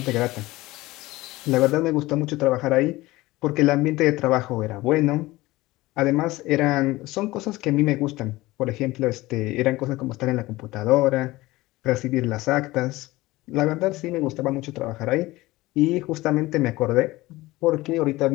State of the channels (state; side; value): quieter; right; 19.2 dB